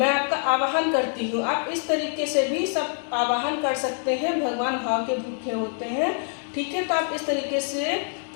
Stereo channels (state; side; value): silent; right; 62 dB below the other